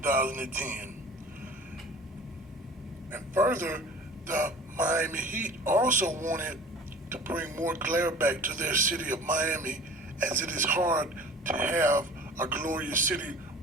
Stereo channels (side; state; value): both; normal; correlation 0.44